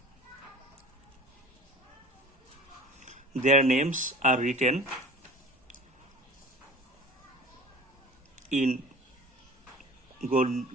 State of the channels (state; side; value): normal; both; correlation 0.41